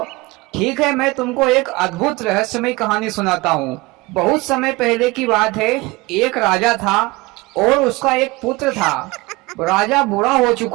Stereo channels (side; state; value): left; quieter; 22.6 dB